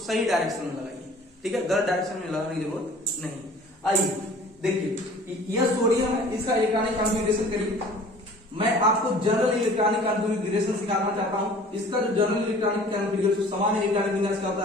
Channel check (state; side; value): normal; both; correlation 0.48